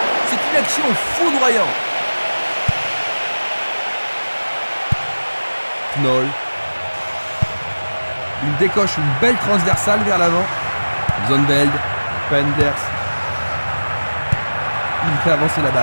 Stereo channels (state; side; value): inverted; both; correlation -1.00